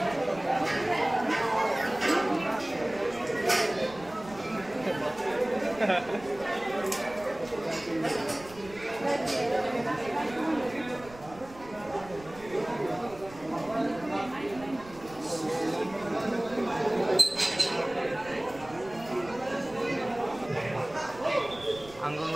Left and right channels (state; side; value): noise; right; rumble, 19 dB below the sound